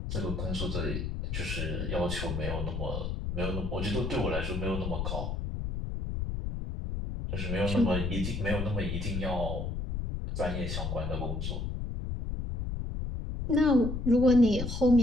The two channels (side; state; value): left; noise; rumble, 3 dB below the sound